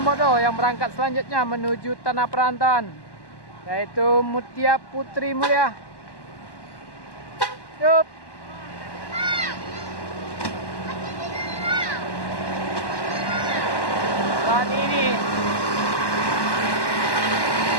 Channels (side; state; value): right; late; 1.1 ms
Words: yang berangkat selanjutnya menuju tanah perantauan, yaitu Mutia Putri Mulia. Yup. Saat ini